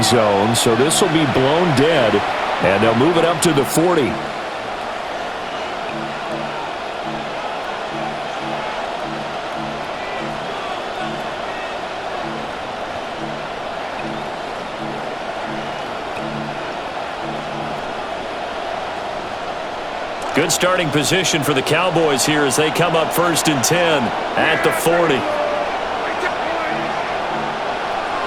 zone, so this will be blown dead, and they'll move it up to the 40. Good starting position for the Cowboys here as they come up 1st and 10 at the 40.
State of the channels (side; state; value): both; identical; correlation 1.00